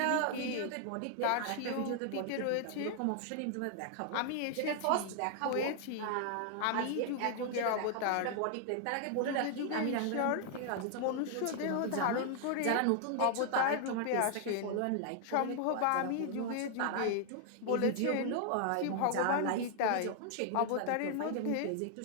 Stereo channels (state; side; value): different; both; correlation 0.00